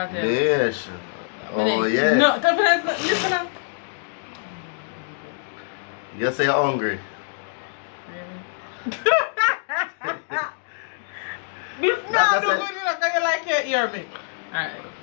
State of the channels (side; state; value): right; silent; 62 dB below the other